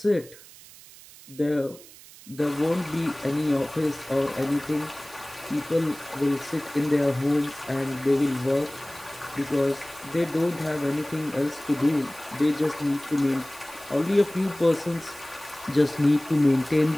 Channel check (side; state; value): right; noise; hiss, 20 dB below the sound